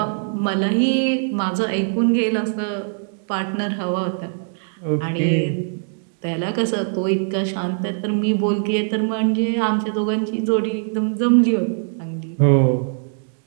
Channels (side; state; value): left; silent; digital silence